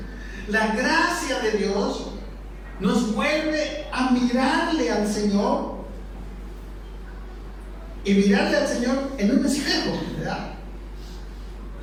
La gracia de Dios nos vuelve a mirarle al Señor, y mirarle al Señor en un espejo, ¿verdad?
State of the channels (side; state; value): both; identical; correlation 1.00